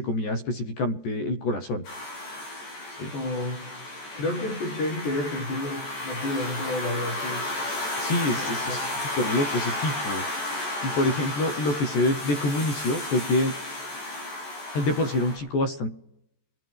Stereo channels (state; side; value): late; right; 14 ms